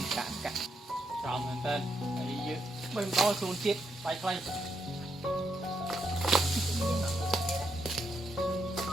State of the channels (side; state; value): both; normal; correlation 0.80